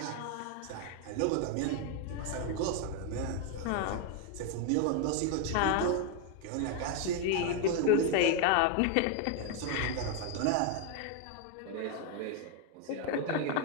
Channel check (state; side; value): different; both; correlation 0.01